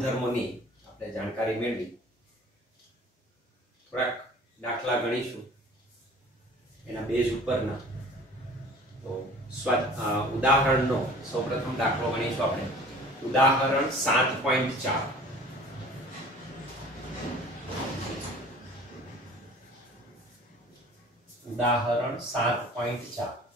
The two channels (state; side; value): normal; both; correlation 0.46